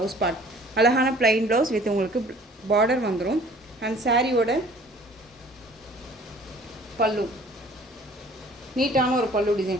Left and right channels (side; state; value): both; normal; correlation 0.52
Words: பார்ட். அழகான ப்ளைன் ப்ளவுஸ் வித் உங்களுக்கு பார்டர் வந்துடும். அண்ட் சாரியோட பல்லு நீட்டான ஒரு பல்லு